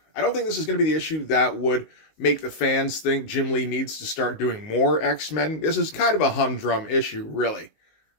I don't think this is going to be the issue that would make the fans think Jim Lee needs to start doing more X-Men. This is kind of a humdrum issue, really.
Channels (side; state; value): right; late; 19 ms